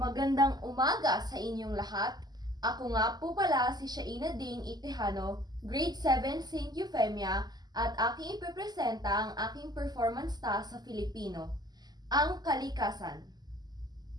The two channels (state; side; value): late; left; 0.20 ms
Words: umaga sa inyong lahat. Ako nga po pala si Shaina Dane Itejano, Grade 7 St. Euphemia, at aking ipipresenta ang aking performance task sa Filipino, ang kalikasan.